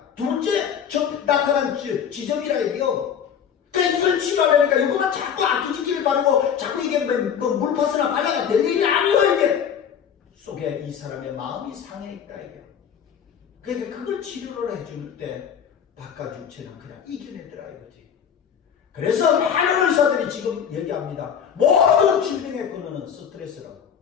둘째 나타난 지점이라 이게요. 그러니까 이걸 치료하려니까 이거만 자꾸 아끼지기를 바르고 자꾸 이게 뭐 물파스나 발라가 될 일이 아니에요 이게. 속에 이 사람의 마음이 상해 있다 이게. 그러니까 그걸 치료를 해줄 때 바깥 육체는 그냥 이겨내더라 이거지. 그래서 많은 의사들이 지금 얘기합니다. 모든 질병의 근원은 스트레스라고.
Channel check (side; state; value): right; quieter; 8.0 dB